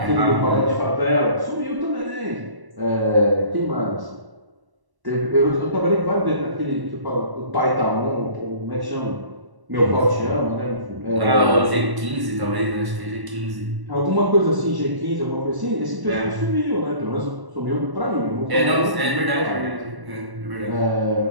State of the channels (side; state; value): left; late; 1.1 ms